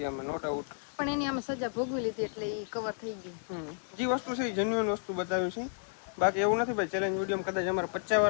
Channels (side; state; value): right; silent; digital silence